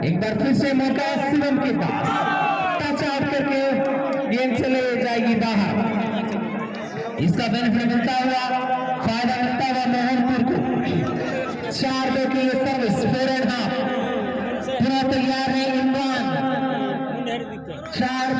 एक बार फिर से मौका शिवम के पास, टच आउट करके गेम से ले जाएगी बाहर। इसका बेनिफिट मिलता हुआ, फायदा मिलता हुआ मोहनपुर को। 4-2 की ये सर्विस, 4 एंड हाफ पूरा तैयार है इमरान।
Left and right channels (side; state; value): both; identical; correlation 1.00